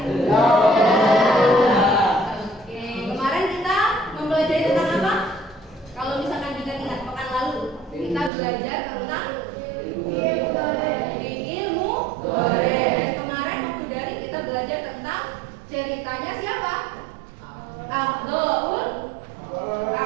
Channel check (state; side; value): drops out; left; at 8.3 s